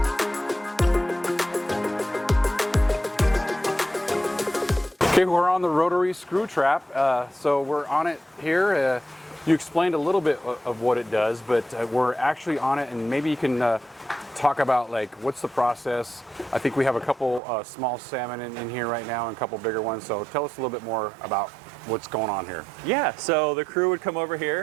Okay, we're on the rotary screw trap, so we're on it here. You explained a little bit of what it does, but we're actually on it, and maybe you can talk about like what's the process. I think we have a couple small salmon in here right now and a couple bigger ones, so tell us a little bit more about what's going on here. Yeah, so the crew would come over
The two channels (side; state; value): left; drops out; at 17.4 s